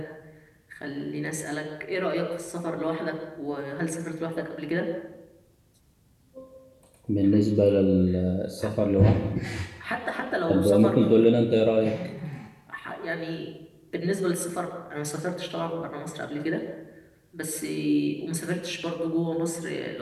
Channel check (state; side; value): identical; both; correlation 1.00